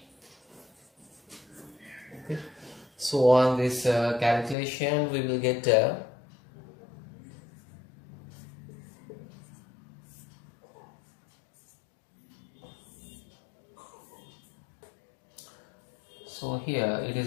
So on this calculation we will get so here it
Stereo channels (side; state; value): right; drops out; at 4.5 s